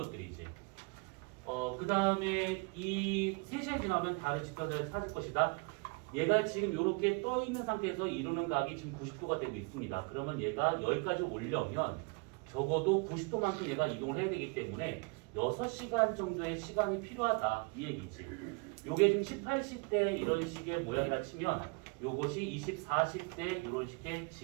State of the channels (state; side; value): quieter; left; 31.3 dB